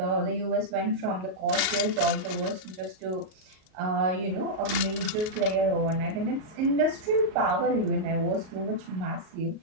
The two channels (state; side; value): late; left; 38 ms